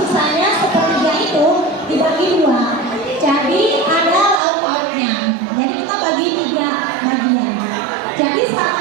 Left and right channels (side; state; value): left; drops out; at 4.4 s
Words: sepertiga itu dibagi dua. Jadi ada lauk pauknya. Jadi kita bagi 3 bagian. Jadi